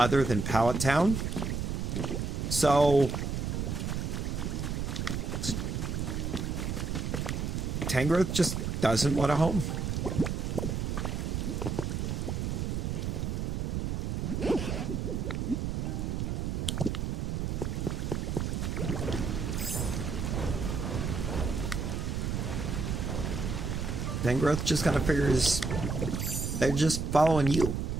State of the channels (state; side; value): noise; right; rumble, 1 dB below the sound